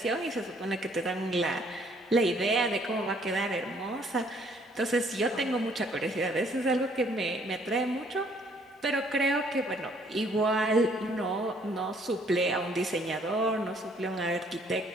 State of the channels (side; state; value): both; normal; correlation 0.63